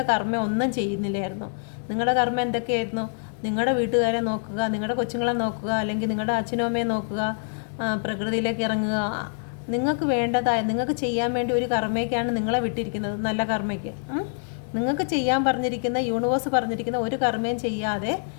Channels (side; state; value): right; silent; digital silence